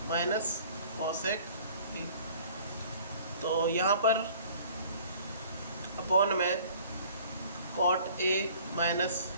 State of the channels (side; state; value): both; inverted; correlation -0.51